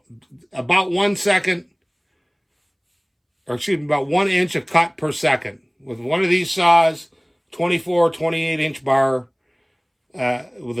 about 1 second, or excuse me, about 1 inch of cut per second. With one of these saws, 24, 28 inch bar, with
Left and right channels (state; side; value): identical; both; correlation 1.00